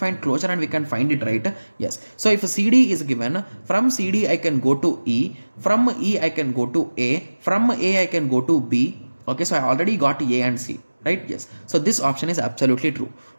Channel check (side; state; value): both; inverted; correlation -1.00